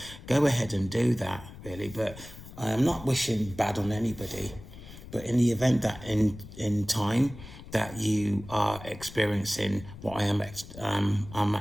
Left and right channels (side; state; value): left; noise; rumble, 15 dB below the sound